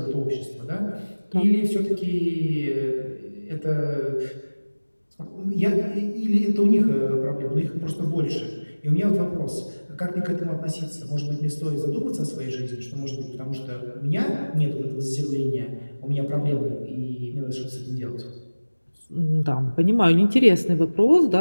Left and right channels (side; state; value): both; inverted; correlation -1.00